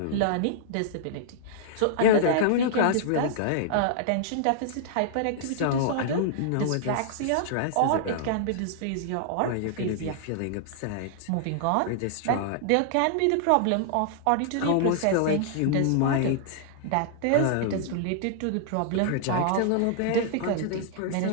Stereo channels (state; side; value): different; both; correlation -0.01